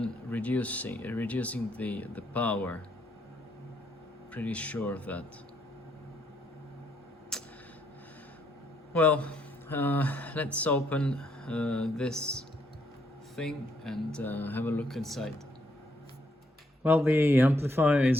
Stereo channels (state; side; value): normal; both; correlation 0.73